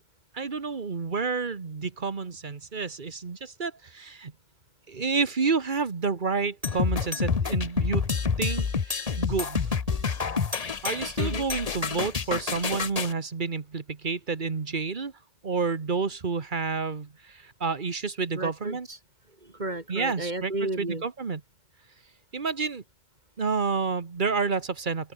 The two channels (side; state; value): left; late; 1.8 ms